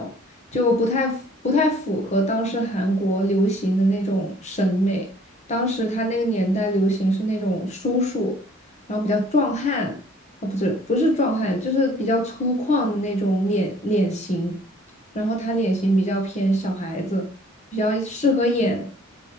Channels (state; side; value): normal; both; correlation 0.56